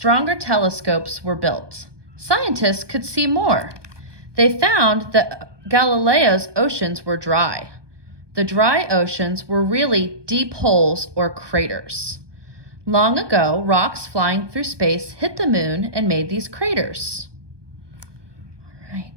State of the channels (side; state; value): left; late; 1.2 ms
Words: telescopes were built. Scientists could see more. They found that Galileo's oceans were dry. The dry oceans were really deep holes or craters. Long ago, rocks flying through space hit the moon and made these craters. All